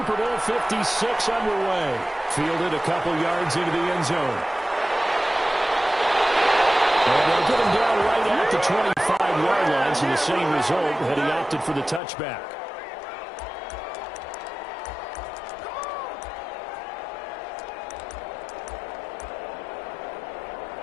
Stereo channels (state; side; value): drops out; right; at 12.0 s